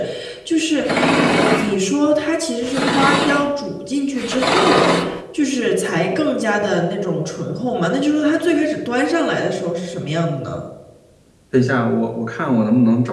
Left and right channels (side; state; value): both; identical; correlation 1.00